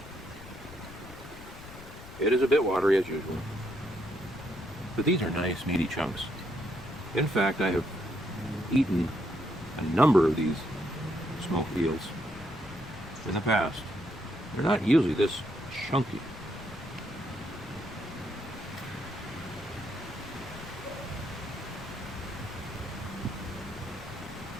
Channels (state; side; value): noise; left; rumble, 16 dB below the sound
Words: It is a bit watery as usual. But these are nice, meaty chunks. In fact, I have eaten a number of these smoked eels in the past. They're not usually this chunky.